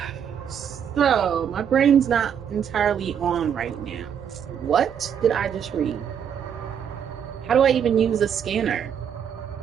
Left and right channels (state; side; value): quieter; left; 8.3 dB